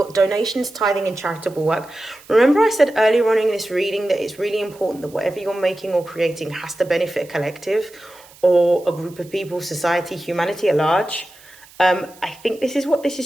donations, tithing and charitable work. Remember I said earlier on in this reading that it's really important that whatever you're making or creating has to benefit a collective or a group of people, society, humanity at large. I think this is what this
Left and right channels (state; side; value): noise; right; hiss, 24 dB below the sound